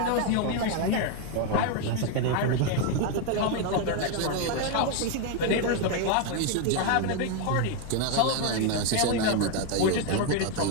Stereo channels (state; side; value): different; both; correlation 0.01